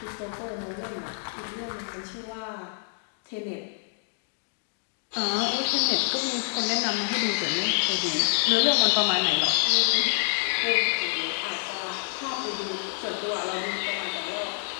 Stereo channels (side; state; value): right; silent; digital silence